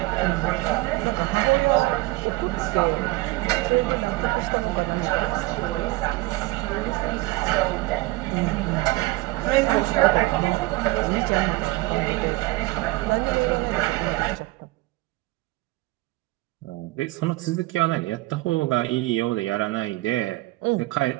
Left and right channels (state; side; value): quieter; left; 20.6 dB